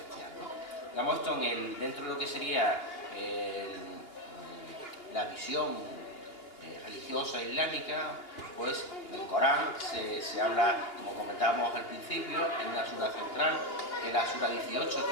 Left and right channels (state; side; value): late; right; 2.8 ms